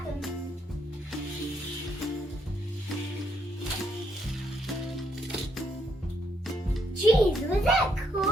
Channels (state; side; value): normal; both; correlation 0.74